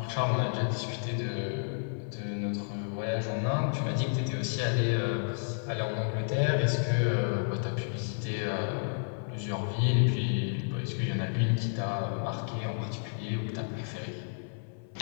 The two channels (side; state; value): right; silent; 57 dB below the other